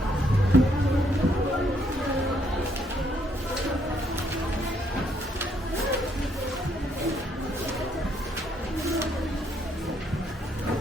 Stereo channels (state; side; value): normal; both; correlation 0.71